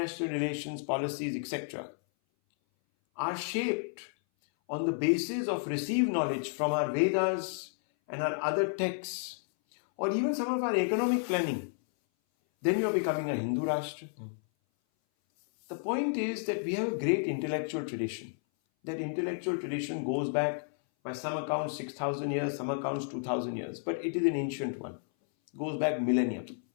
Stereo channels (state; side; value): silent; right; 57 dB below the other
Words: relations, policies, etc., are shaped on the basis of received knowledge from our Vedas and our other texts, or even some of our economic planning, then you are becoming a Hindu Rashtra. The point is that we have a great intellectual tradition. That intellectual tradition goes back, by some accounts, 6,000 years, some accounts 2,000 years, but it is an ancient one. It goes back millennia.